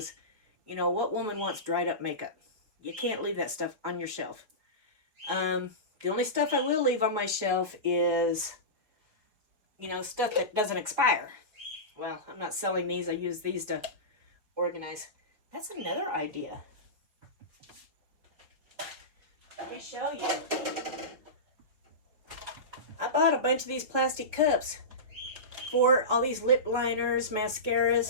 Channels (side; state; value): left; late; 4.8 ms